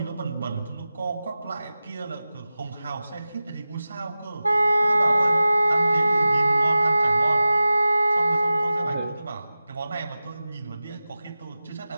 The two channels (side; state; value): both; inverted; correlation -0.95